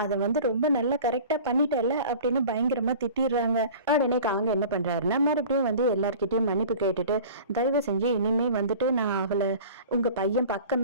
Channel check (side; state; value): both; inverted; correlation -0.41